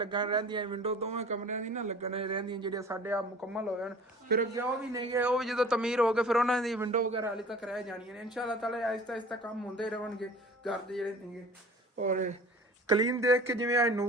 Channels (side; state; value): both; normal; correlation 0.44